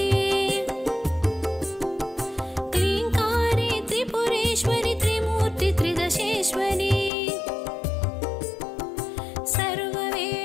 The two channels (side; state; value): right; drops out; at 7.1 s